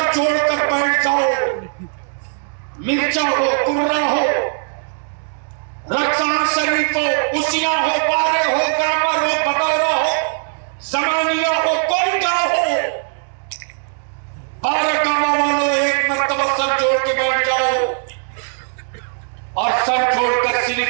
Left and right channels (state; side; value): silent; left; digital silence